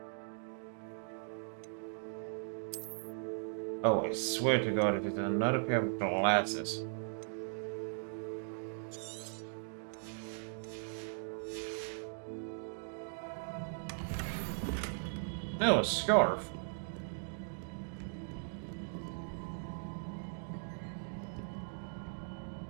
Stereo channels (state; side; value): silent; left; digital silence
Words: Oh, I swear to God, if it's another pair of glasses. No, a scarf.